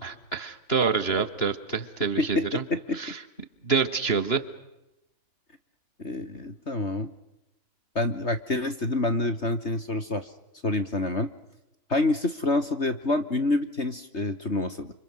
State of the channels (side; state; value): right; late; 3.2 ms